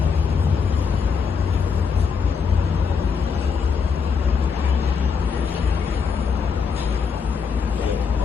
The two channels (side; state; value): right; quieter; 5.9 dB